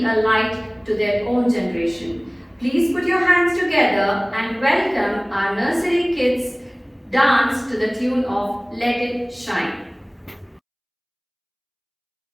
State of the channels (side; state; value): both; identical; correlation 1.00